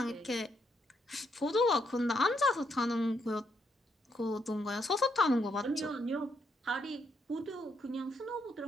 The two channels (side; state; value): both; normal; correlation 0.77